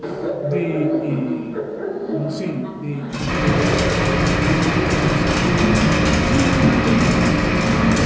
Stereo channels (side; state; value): both; identical; correlation 1.00